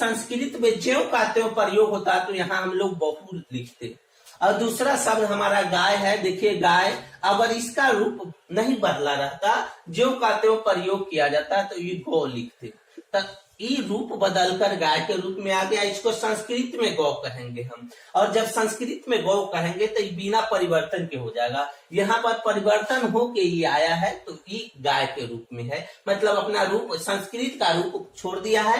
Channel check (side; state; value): both; identical; correlation 1.00